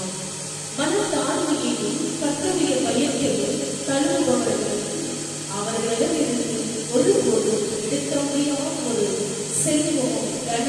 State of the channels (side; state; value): both; identical; correlation 1.00